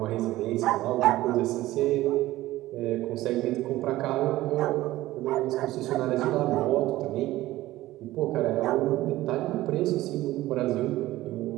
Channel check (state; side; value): quieter; left; 16.5 dB